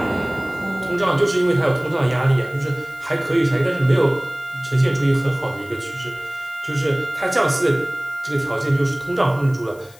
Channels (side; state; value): left; noise; hiss, 25 dB below the sound